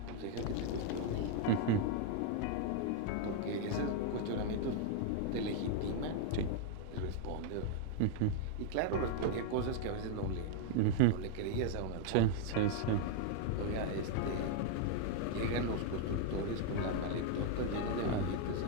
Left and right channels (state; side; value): different; both; correlation 0.00